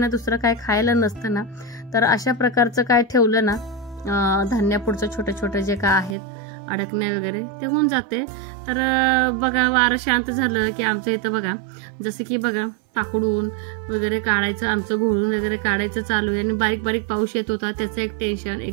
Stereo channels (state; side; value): drops out; left; at 6.2 s